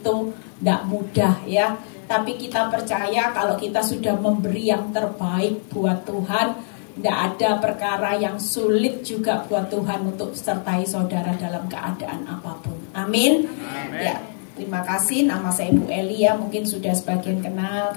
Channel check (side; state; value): right; silent; digital silence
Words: tidak mudah ya. Tapi kita percaya kalau kita sudah memberi yang terbaik buat Tuhan, tidak ada perkara yang sulit juga buat Tuhan untuk sertai saudara dalam keadaan apapun. Amin. Ya, terima kasih. Nama saya Ibu Eli ya, mungkin sudah sebagian kenal